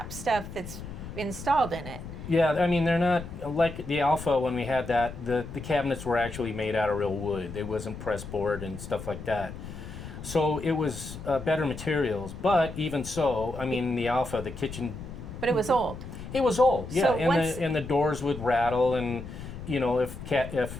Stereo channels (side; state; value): left; noise; rumble, 11 dB below the sound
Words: stuff that's installed in it. yeah, I mean, they're not like the Alpha. When we had that, the cabinets were actually made out of real wood. It wasn't press board and stuff like that. So it was better materials. But even so, I mean, the Alpha, the kitchen. But it was old. It was old, yeah, So and the doors would rattle, and you know,